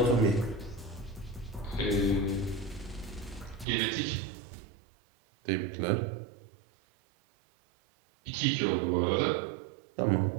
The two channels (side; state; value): left; drops out; at 3.7 s